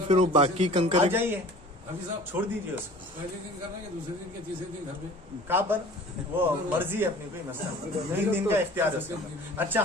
फिर वो बाकी कंकर आ जाइए, छोड़ दीजिए उसको। पहले दिन करना है, दूसरे दिन के तीसरे दिन घर पे कहाँ पर वो मर्जी है अपनी, कोई मसला नहीं, 3 दिन का इख्तियार है। अच्छा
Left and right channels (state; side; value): normal; both; correlation 0.45